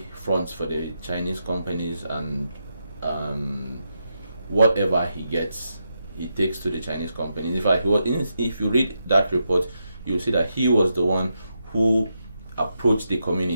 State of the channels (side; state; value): both; inverted; correlation -0.84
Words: fronts for the Chinese companies, and whatever he gets, he takes to the Chinese companies. In fact, if you read that report, you'll see that he was the one who approached the